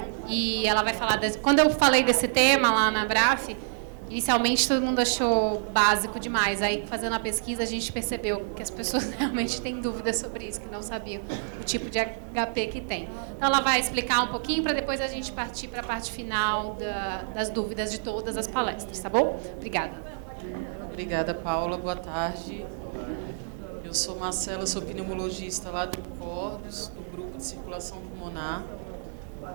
E ela vai falar... Quando eu falei desse tema lá na Braf, inicialmente todo mundo achou básico demais. Aí, fazendo a pesquisa, a gente percebeu que as pessoas realmente têm dúvidas sobre isso, que não sabiam o tipo de HP que tem. Então, ela vai explicar um pouquinho para depois a gente partir para a parte final das dúvidas de todas as palestras, tá bom? Obrigada. Obrigada, Paula. Boa tarde. Eu sou Marcela, sou pneumologista lá do CORDOS, do Grupo de Circulação Pulmonar.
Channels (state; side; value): silent; left; digital silence